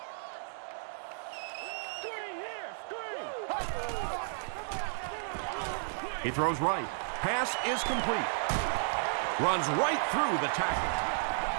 He throws right. Pass is complete. Runs right through the tackle.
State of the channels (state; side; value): silent; left; digital silence